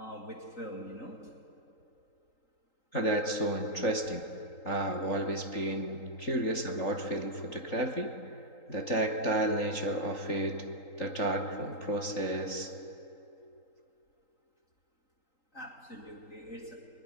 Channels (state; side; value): late; right; 3.8 ms